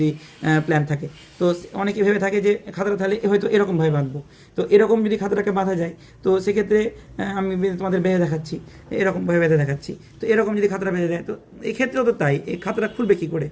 প্ল্যান থাকে। তো অনেকে ভেবে থাকে যে খাতাটা তাহলে হয়তো এরকমভাবে বাঁধবো। তো এরকম যদি খাতাটাকে বাঁধা যায় তো সেক্ষেত্রে আমি তোমাদের বেঁধে দেখাচ্ছি, এরকমভাবে বেঁধে দেখাচ্ছি। তো এরকম যদি খাতাটা বেঁধে দেয় তো এক্ষেত্রেও তো তাই, এই খাতাটা খুলবে কী করে,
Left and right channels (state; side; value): identical; both; correlation 1.00